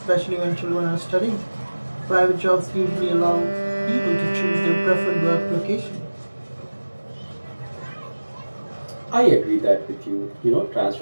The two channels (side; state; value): both; inverted; correlation -1.00